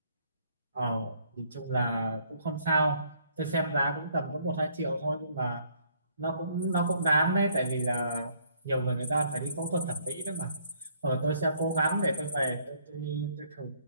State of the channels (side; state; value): both; inverted; correlation -0.65